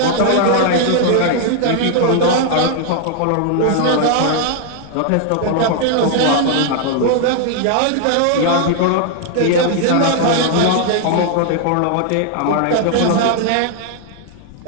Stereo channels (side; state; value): both; different; correlation 0.00